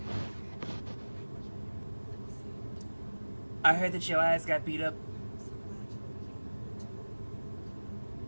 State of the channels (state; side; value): inverted; both; correlation -1.00